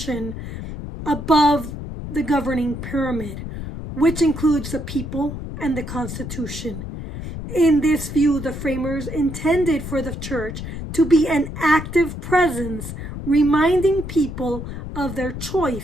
above the governing pyramid, which includes the people and the Constitution. In this view, the framers intended for the church to be an active presence, reminding people of their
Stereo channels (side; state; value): left; noise; rumble, 8 dB below the sound